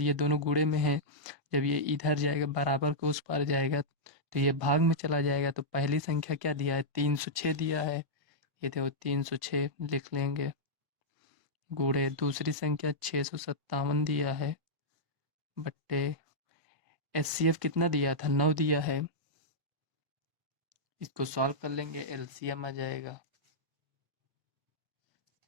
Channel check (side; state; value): left; late; 1.5 ms